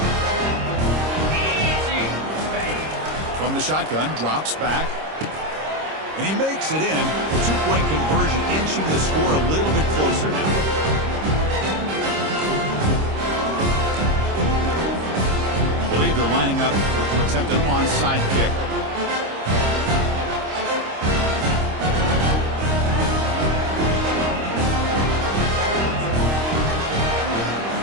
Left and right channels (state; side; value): late; left; 26 ms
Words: From the shotgun, drops back. And he makes it in. The two-point conversion inching the score a little bit closer now. I believe they're lining up to attempt an onside kick.